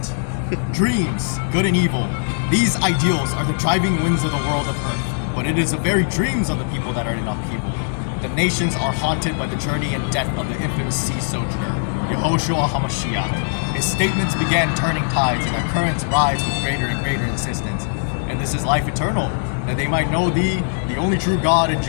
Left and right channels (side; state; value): right; silent; digital silence